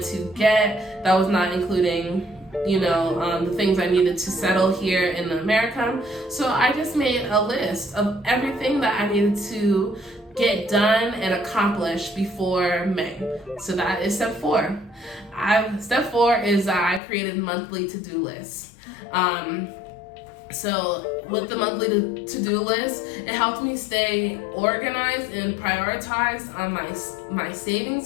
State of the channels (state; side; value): drops out; right; at 17.0 s